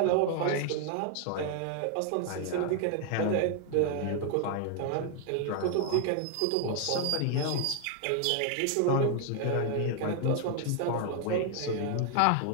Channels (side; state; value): both; different; correlation 0.00